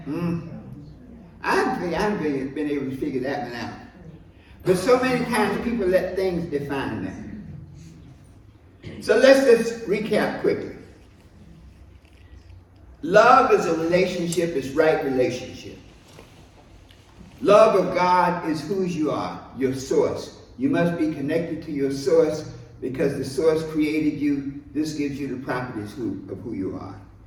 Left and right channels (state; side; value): identical; both; correlation 1.00